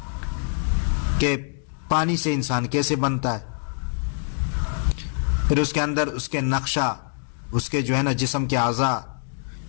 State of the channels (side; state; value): right; silent; digital silence